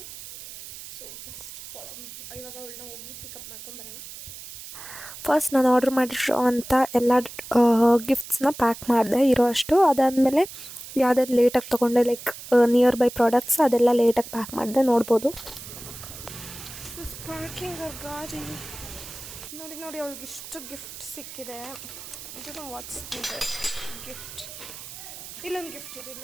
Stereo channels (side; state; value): right; noise; hiss, 13 dB below the sound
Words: So just follow me. ಇವಾಗ ಅವಳನ್ನ ಹೋಗಿ ಪಿಕಪ್ ಮಾಡ್ಕೊಂಬರೋಣ. ಫಸ್ಟ್ ನಾನು ಆರ್ಡ್ರ್ ಮಾಡಿರೋ ಅಂಥ ಎಲ್ಲ ಗಿಫ್ಟ್ಸ್ನ ಪ್ಯಾಕ್ ಮಾಡಿದೆ ಇರೋ ಅಷ್ಟು. ಅದಾದಮೇಲೆ ಯಾವುದಾದ್ರು ಲೇಟಾಗಿ ತೊಗೊಂಡೆ, ಲೈಕ್ ನಿಯರ್ ಬೈ ಪ್ರಾಡಕ್ಟ್ಸ್ ಅದೆಲ್ಲ ಲೇಟಾಗಿ ಪ್ಯಾಕ್ ಮಾಡಿದೆ. ನೋಡ್ಬೋದು ಪಾರ್ಕಿಂಗ್ ಗಾಡಿ ನೋಡಿ ನೋಡಿ ಅವಳಿಗೆ ಇಷ್ಟು ಗಿಫ್ಟ್ ಸಿಕ್ಕಿದೆ. ಇದು ವಾಟ್ಸ್ ಗಿಫ್ಟ್. ಇಲ್ಲೊಂದು ಗಿಫ್ಟ್ ಇದೆ,